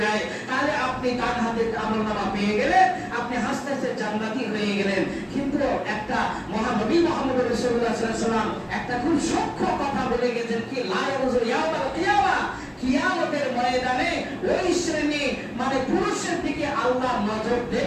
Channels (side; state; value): both; identical; correlation 1.00